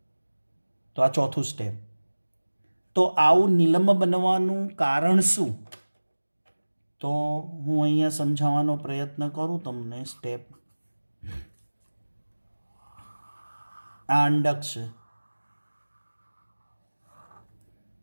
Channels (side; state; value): both; inverted; correlation -1.00